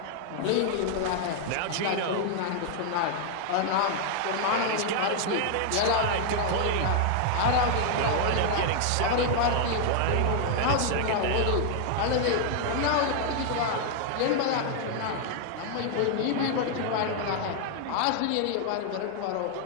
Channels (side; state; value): both; different; correlation 0.00